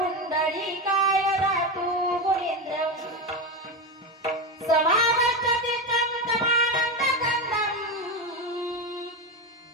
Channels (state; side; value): normal; both; correlation 0.16